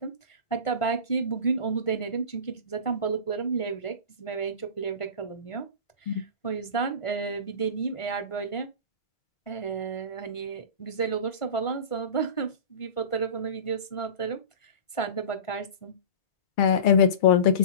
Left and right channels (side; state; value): right; late; 1.5 ms